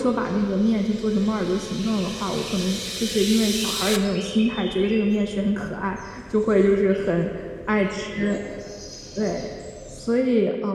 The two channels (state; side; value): identical; both; correlation 1.00